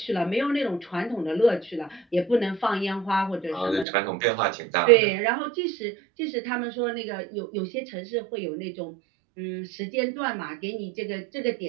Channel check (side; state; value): left; drops out; at 3.9 s